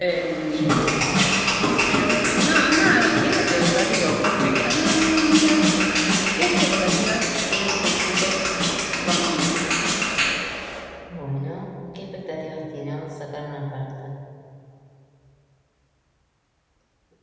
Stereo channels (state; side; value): identical; both; correlation 1.00